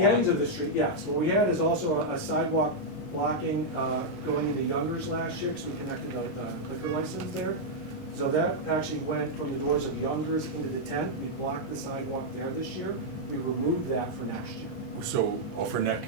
lines. of the street, yes. What we had is also a sidewalk blocking going into Youngers last year, because we connected the liquor license there. So that actually went from the doors of Youngers into the tent. We blocked the sidewalk there this year. We removed that for next year. So, for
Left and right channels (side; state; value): right; late; 19 ms